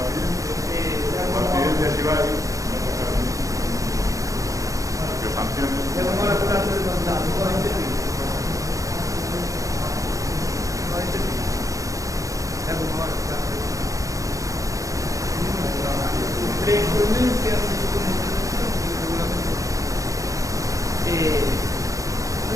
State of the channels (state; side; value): late; left; 0.16 ms